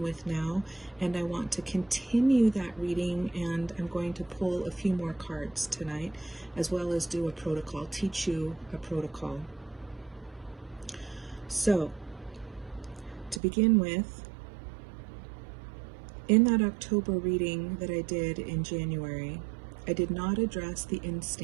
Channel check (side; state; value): left; drops out; at 13.4 s